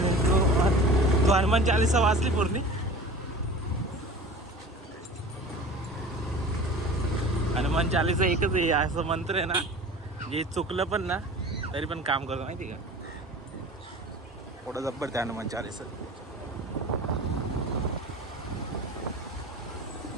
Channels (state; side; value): normal; both; correlation 0.39